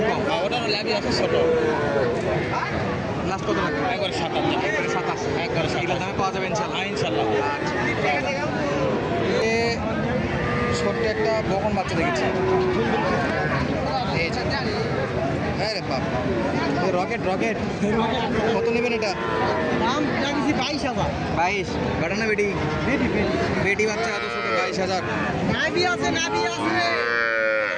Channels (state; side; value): identical; both; correlation 1.00